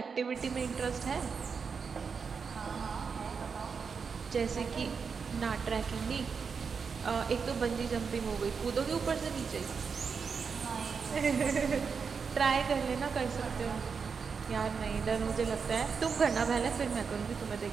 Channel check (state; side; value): quieter; left; 5.7 dB